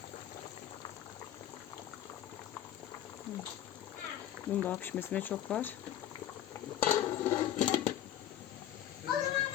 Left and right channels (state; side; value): quieter; right; 11.6 dB